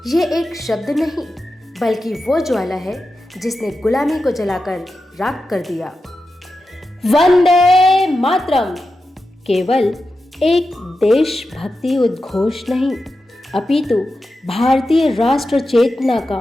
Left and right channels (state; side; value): normal; both; correlation 0.91